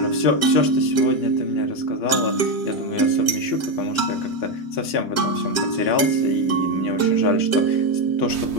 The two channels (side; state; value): right; late; 2.9 ms